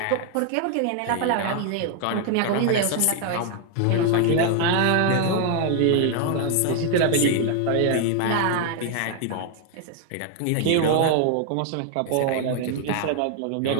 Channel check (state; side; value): different; both; correlation 0.00